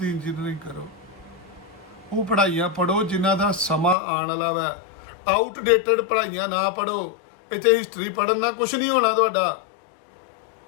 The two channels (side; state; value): right; drops out; at 4.0 s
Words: ਇੰਜੀਨੀਅਰਿੰਗ ਕਰੋ। ਉਹ ਪੜ੍ਹਾਈਆਂ ਪੜ੍ਹੋ ਜਿਨ੍ਹਾਂ ਦਾ ਸਮਾਂ ਆਉਣ ਵਾਲਾ ਵਾ। ਆਊਟਡੇਟਡ ਪੜ੍ਹਾਈਆਂ ਨਾ ਪੜ੍ਹੋ। ਇੱਥੇ ਹਿਸਟਰੀ ਪੜ੍ਹਨ ਨਾਲ ਕੁਝ ਨਹੀਂ ਹੋਣਾ ਤੁਹਾਡਾ।